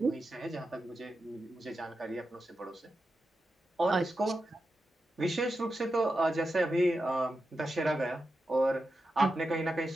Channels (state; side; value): normal; both; correlation 0.89